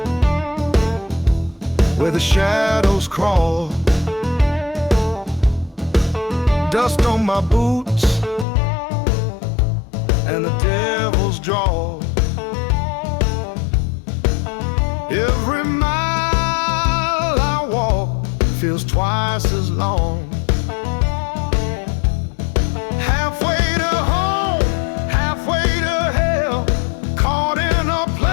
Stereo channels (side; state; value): right; drops out; at 8.5 s